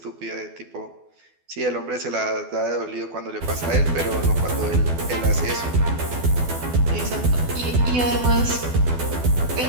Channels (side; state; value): left; late; 12 ms